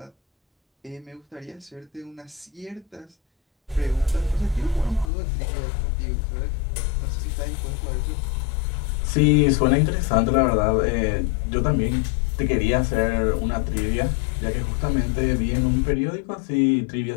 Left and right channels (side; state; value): right; drops out; at 5.1 s